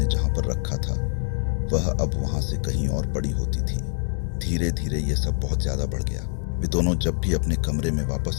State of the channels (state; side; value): silent; right; 62 dB below the other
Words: जहां पर रखा था, वह अब वहां से कहीं और बड़ी होती थी। धीरे धीरे यह सब बहुत ज्यादा बढ़ गया। वे दोनों जब भी अपने कमरे में